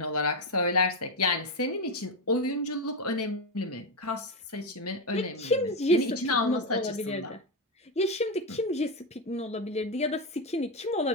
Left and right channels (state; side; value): normal; both; correlation 0.10